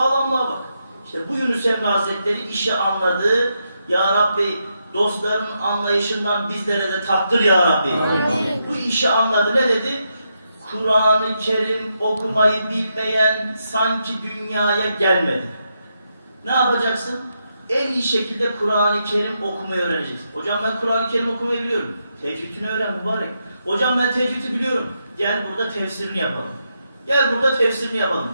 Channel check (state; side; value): inverted; both; correlation -0.82